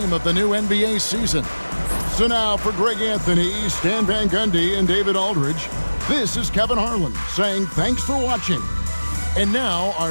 of the new NBA season. So now for Greg Anthony, Stan Van Gundy, and David Aldridge, this is Kevin Harlan saying thanks for watching. And now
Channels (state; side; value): inverted; both; correlation -1.00